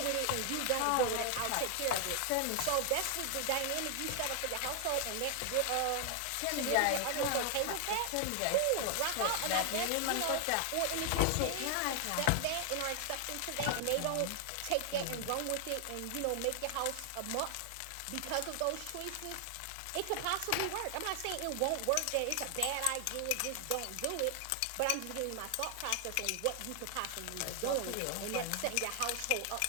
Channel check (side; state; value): both; different; correlation 0.00